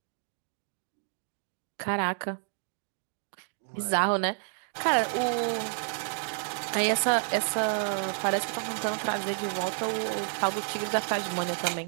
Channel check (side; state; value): left; silent; 58 dB below the other